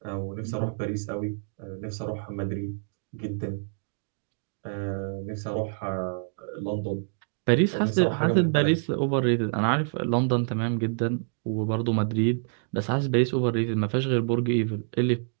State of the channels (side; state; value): left; silent; digital silence